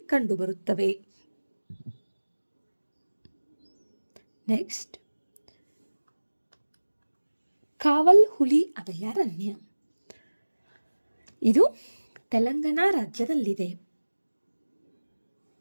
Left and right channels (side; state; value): both; inverted; correlation -1.00